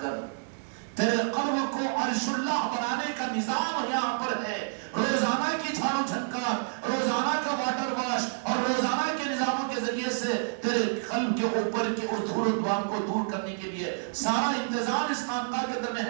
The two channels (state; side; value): silent; left; 55 dB below the other